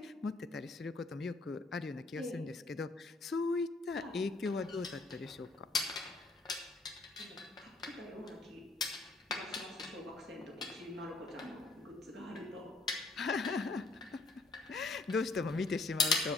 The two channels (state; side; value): quieter; right; 3.3 dB